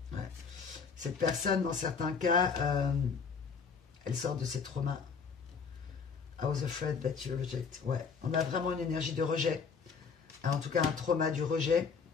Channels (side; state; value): right; quieter; 5.7 dB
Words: Ouais. Cette personne, dans certains cas, elle sort de ses traumas. I was afraid that you reject. Ouais, on a vraiment une énergie de rejet. En tout cas, un trauma du rejet,